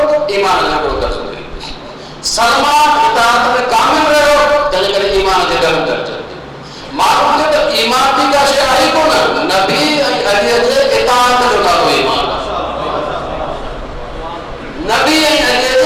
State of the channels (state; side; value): identical; both; correlation 1.00